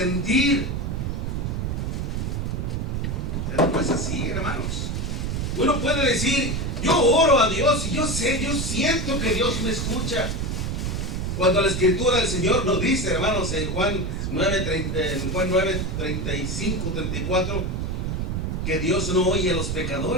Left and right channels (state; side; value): noise; right; rumble, 1 dB below the sound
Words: Pero no es así, hermanos. Uno puede decir, yo oro a Dios y yo sé, yo siento que Dios me escucha. Cuando la Escritura del Señor nos dice, hermanos, en Juan 9, 35, 34, que Dios no oye a los